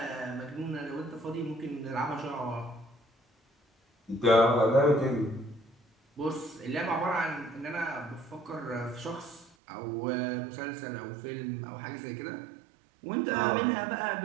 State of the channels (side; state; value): left; drops out; at 9.5 s